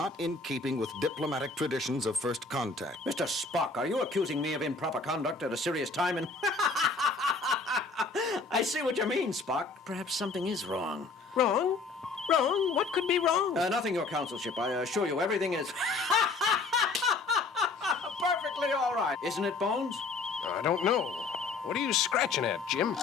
in keeping with diplomatic traditions of first contact. Mr. Spock, are you accusing me of improper conduct at a serious time? And I see what you mean, Spock. Perhaps something is wrong. Wrong? Wrong? What could be wrong? Nothing, your consulship. I assure you, everything is perfectly all right. Isn't it, Bones? I don't know. What are you scratching at, Jim?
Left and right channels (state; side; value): quieter; right; 3.9 dB